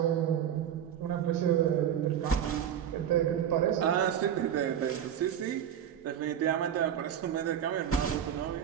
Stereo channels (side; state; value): left; quieter; 9.5 dB